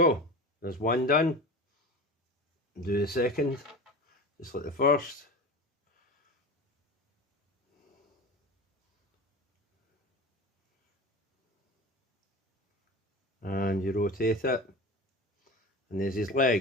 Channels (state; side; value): normal; both; correlation 0.31